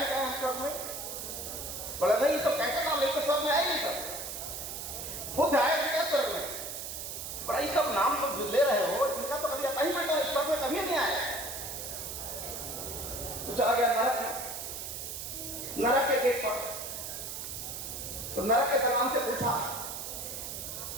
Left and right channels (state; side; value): noise; right; hiss, 6 dB below the sound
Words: क्या यहाँ स्वर्ग में? बोला नहीं, ये सब कैसे नाम लेके स्वर्ग में आए नहीं सब? बुद्ध आए थे क्या स्वर्ग में? बड़ा ये सब नाम तो ले रहे हो, इनका तो कभी आता ही बेटा स्वर्ग में कभी नहीं आया। तो चला गया नरक में, नरक के गेट पर। तो नरक के दरवान से पूछा